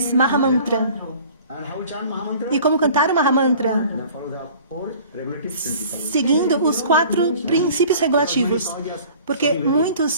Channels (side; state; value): both; inverted; correlation -0.48